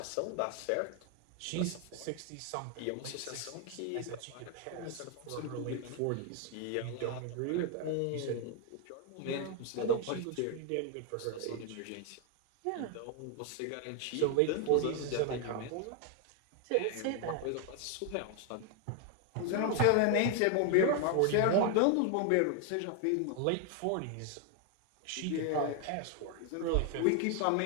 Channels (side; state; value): both; different; correlation 0.00